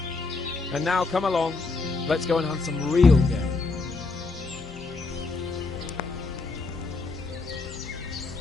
And now come along. Let's go and hunt some real game.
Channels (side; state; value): right; quieter; 3.8 dB